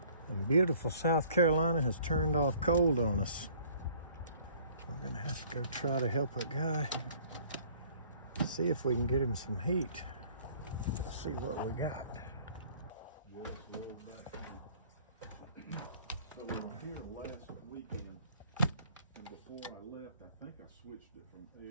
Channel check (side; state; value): both; inverted; correlation -0.56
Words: and beautiful South Carolina has turned off cold on us. We're gonna have to go try to help a guy, see if we can get him some heat. Let's see what we got. So we were here last weekend, and before I left, I think I switched it from